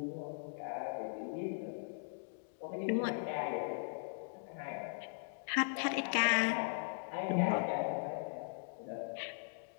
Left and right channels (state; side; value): silent; right; digital silence